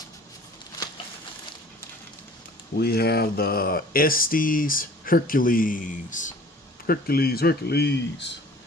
We have the Estes Hercules. Hercules.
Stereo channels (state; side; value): normal; both; correlation 0.49